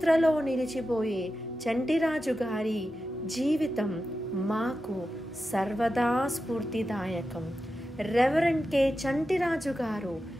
నిలిచిపోయే చంటిరాజు గారి జీవితం మాకు సర్వదా స్ఫూర్తిదాయకం. రెవరెండ్ కె చంటిరాజు గారు,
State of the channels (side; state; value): both; normal; correlation 0.91